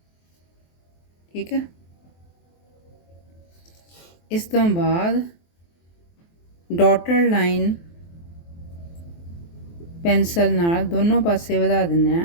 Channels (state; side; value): late; right; 23 ms